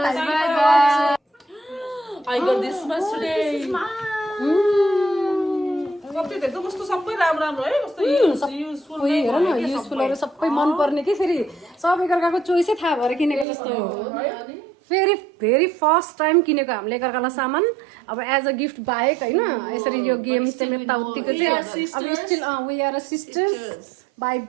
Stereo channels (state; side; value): drops out; left; at 13.5 s